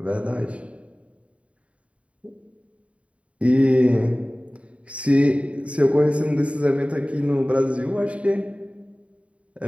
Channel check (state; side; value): late; left; 0.064 ms